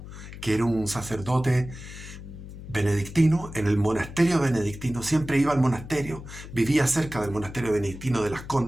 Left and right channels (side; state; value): left; noise; hum, 13 dB below the sound